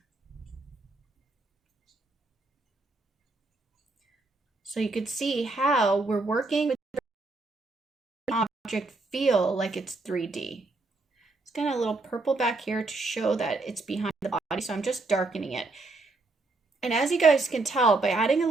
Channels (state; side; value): quieter; left; 3.3 dB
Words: So you could see how we're working with the object feel like it's 3D. It's got a little purple back here to show that it's behind the body, so I'm just darkening it. And as you guys can tell, by adding a